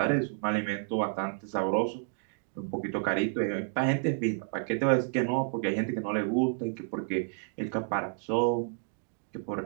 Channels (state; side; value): silent; left; 57 dB below the other